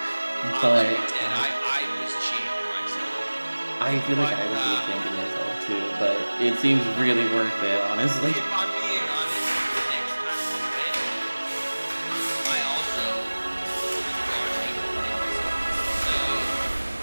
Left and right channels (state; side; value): inverted; both; correlation -1.00